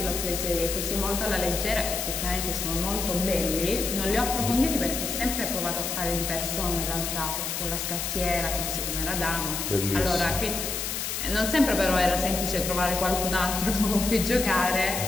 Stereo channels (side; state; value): left; noise; hiss, 3 dB below the sound